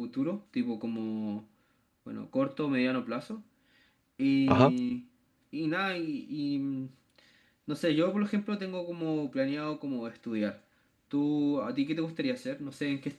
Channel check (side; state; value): both; identical; correlation 1.00